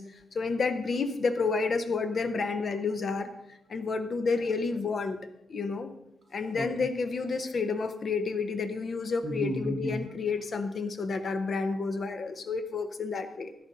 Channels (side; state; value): right; quieter; 3.8 dB